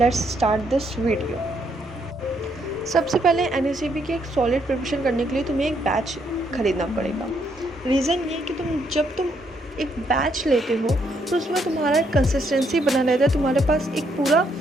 let's start this video. सबसे पहले NSCB की एक सॉलिड प्रिपरेशन करने के लिए तुम्हें एक बैच ख़रीदना पड़ेगा. रीज़न ये कि जब तुम एक बैच लेते हो तो उसमें तुम्हारा कंसिस्टेंसी बना रहता है. तुम्हारे पास एक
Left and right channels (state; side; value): normal; both; correlation 0.73